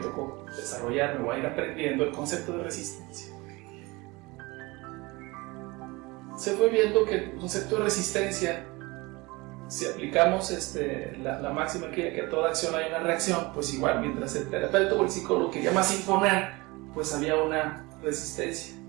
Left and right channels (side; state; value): left; quieter; 23.5 dB